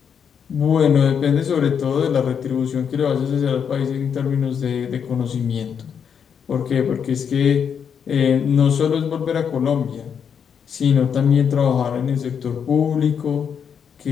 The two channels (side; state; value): right; quieter; 7.4 dB